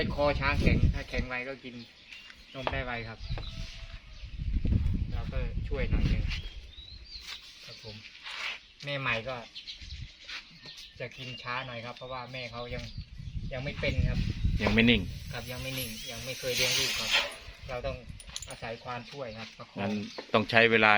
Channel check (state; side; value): identical; both; correlation 1.00